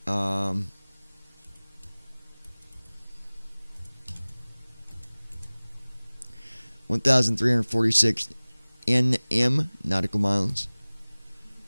1,346 NM nautical miles.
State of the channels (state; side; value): inverted; both; correlation -1.00